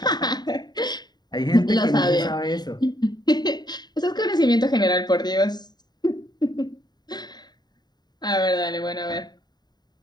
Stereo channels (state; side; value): late; right; 0.20 ms